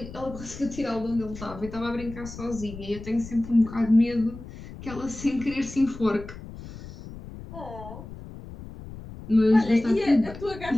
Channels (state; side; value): noise; left; rumble, 14 dB below the sound